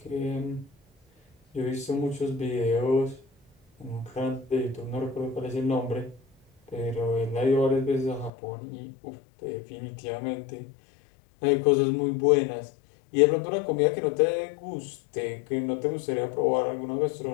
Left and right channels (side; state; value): right; drops out; at 8.3 s